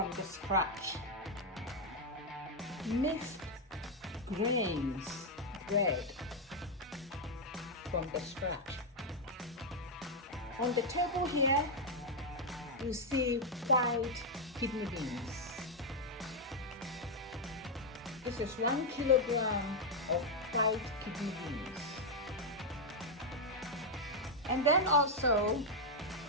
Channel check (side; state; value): both; normal; correlation 0.00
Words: the scratch. Mixed grains bread from the scratch. On the table here, you see white kidney beans. This is 1 kilogram of white kidney beans. And then also